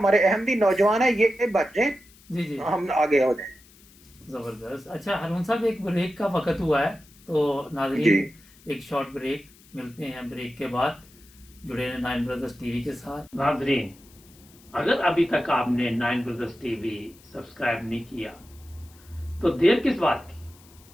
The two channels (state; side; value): noise; left; hiss, 26 dB below the sound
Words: अहमदी नौजवान है, ये बच जाए, जी, जी। हम आगे हो जाए। ज़बरदस्त। अच्छा हारून साहब, एक ब्रेक का वक़्त हुआ है, तो जी। नाज़रीन एक शॉर्ट ब्रेक, मिलते हैं ब्रेक के बाद। जुड़े रहें नाइन ब्रदर्स टीवी के साथ। नाज़रीन, अगर अभी तक आपने नाइन ब्रदर्स टीवी सब्सक्राइब नहीं किया तो देर किस बात